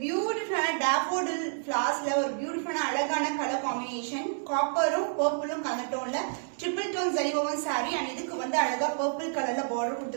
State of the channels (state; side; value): silent; left; digital silence